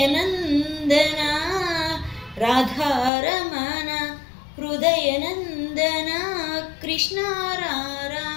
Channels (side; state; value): right; drops out; at 3.1 s